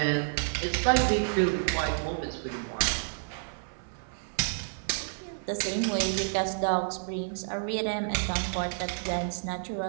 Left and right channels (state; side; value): silent; left; 56 dB below the other